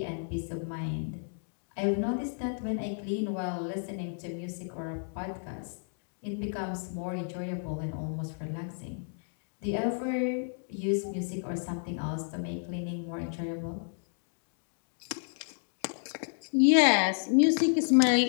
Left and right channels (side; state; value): right; silent; digital silence